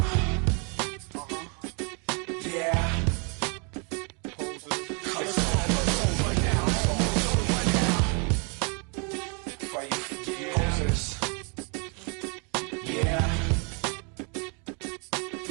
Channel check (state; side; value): quieter; left; 35.8 dB